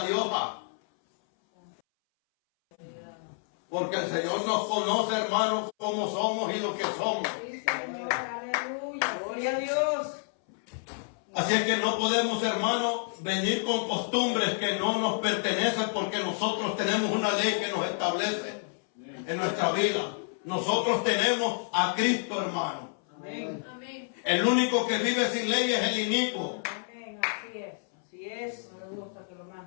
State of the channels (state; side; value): silent; right; 58 dB below the other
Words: de hoja. Porque el Señor nos conoce, hermanos, como somos y lo que somos. Sí, Señor. Aleluya. Gloria a Dios. Así es que no podemos, hermanos, venir con costumbres que no nos pertenecen porque nosotros tenemos una ley que nos establece en nuestra vida. Nosotros tenemos a Cristo, hermano. Amén. Amén. El único que vive sin ley es el inicuo. Amén. Así es. Así es. No le gusta que lo